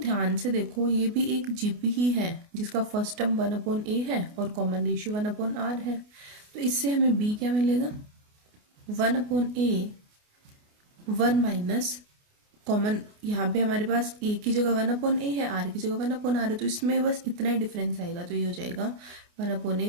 से देखो, ये भी एक जीपी ही है जिसका फर्स्ट टर्म 1/a है और कॉमन रेशियो 1/r है। तो इससे हमें b क्या मिलेगा, 1/a 1 माइनस कॉमन, यहाँ पे हमारे पास a की जगह 1/a है, r की जगह 1/r है, तो इसमें बस इतना ही डिफरेंस आएगा। तो ये हो जाएगा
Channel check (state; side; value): late; left; 28 ms